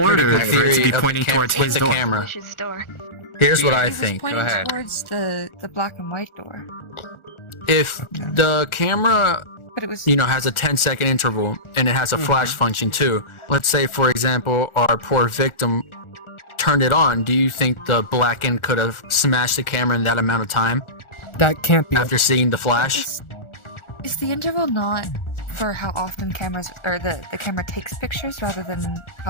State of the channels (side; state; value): right; late; 1.4 ms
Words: ordered good for it to theory be of pointing towards with his the door. camera. Wish's door. Here's what I It was think. pointing Go ahead. towards the black and white door. If the camera, But it was. has a 10-second interval and it has a flash function too. Let's say, for example, our poor victim turned it on. Do you think the blackened could have smashed the camera in that amount of time That can't be. after seeing the flash? Is the interval not for how often cameras or the camera takes pictures rather than